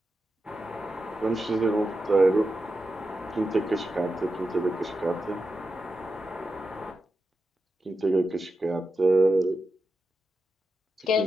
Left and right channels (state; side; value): normal; both; correlation 0.89